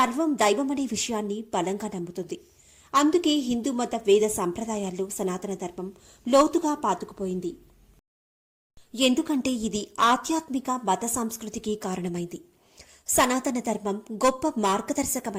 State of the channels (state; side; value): identical; both; correlation 1.00